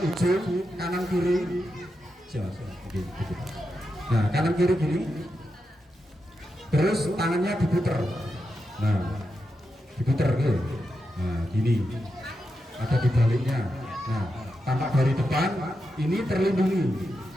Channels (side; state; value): both; normal; correlation 0.87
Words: ujung kanan kiri. Nah, kanan kiri gini. Terus tangannya diputer. Nah, diputer gitu. Nah, gini. Ada di baliknya. Nah, tampak dari depan ini terlindungi.